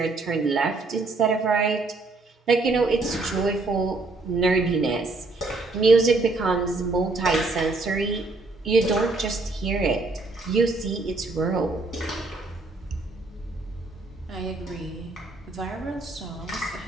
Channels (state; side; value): quieter; left; 3.4 dB